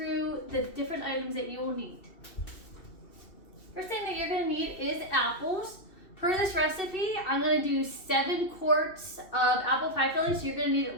the different items that you will need. First thing that you're going to need is apples. Per this recipe, I'm going to do 7 quarts of apple pie filling. So you're going to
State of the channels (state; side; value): late; right; 2.7 ms